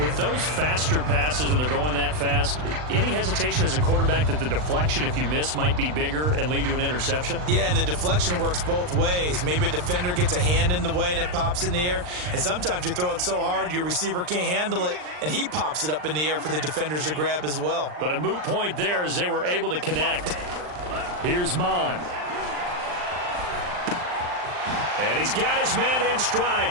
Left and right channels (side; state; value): left; late; 39 ms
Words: those faster passes when they're going that fast, any hesitation as a quarterback that the deflection, if you miss, might be bigger and lead to an interception? Yeah, and the deflection works both ways. Maybe a defender gets a hand in the way and it pops in the air. And sometimes you throw it so hard your receiver can't handle it, and he pops it up in the air for the defenders to grab as well. But a moot point there as they were able to connect. Here's Mond. And he's got his man in stride,